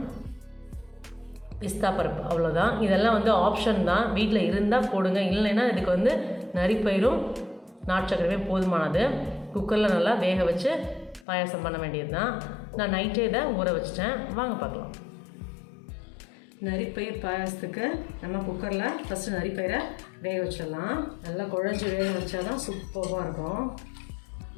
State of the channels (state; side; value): drops out; right; at 11.2 s